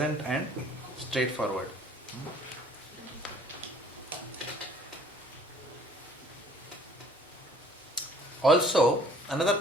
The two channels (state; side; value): normal; both; correlation 0.55